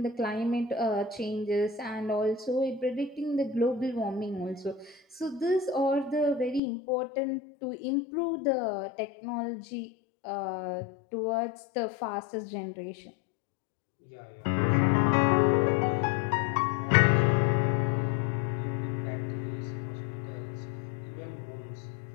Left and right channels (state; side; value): drops out; right; at 6.6 s